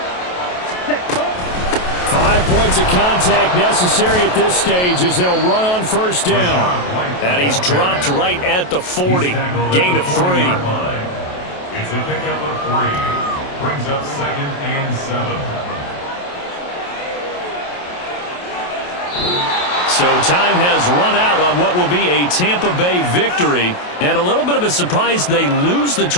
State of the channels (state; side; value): late; right; 28 ms